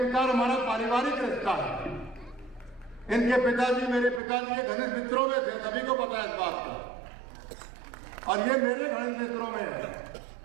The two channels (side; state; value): left; drops out; at 4.2 s